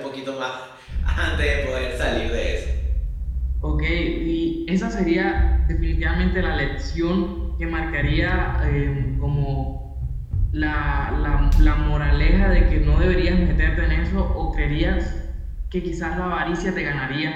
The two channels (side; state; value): both; identical; correlation 1.00